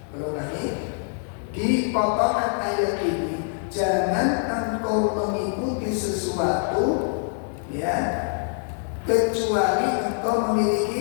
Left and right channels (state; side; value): silent; right; 57 dB below the other